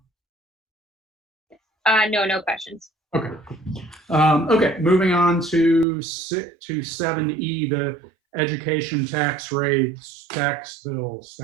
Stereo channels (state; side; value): drops out; left; at 5.9 s